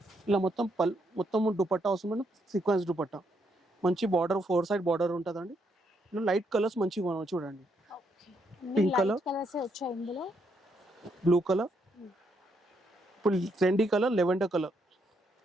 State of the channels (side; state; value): both; normal; correlation 0.76